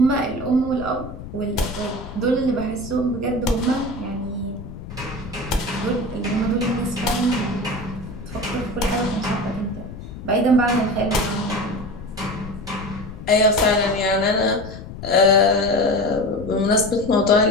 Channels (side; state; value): left; noise; rumble, 12 dB below the sound